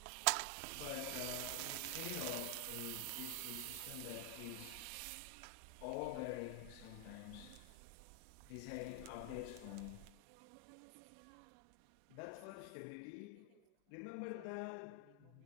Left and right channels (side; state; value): both; different; correlation 0.00